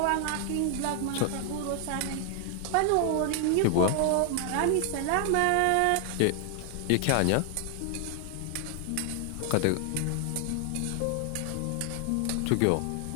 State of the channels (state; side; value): different; both; correlation 0.00